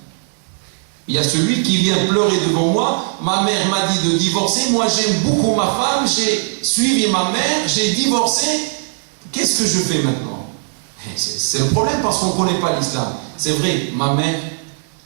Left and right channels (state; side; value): silent; left; digital silence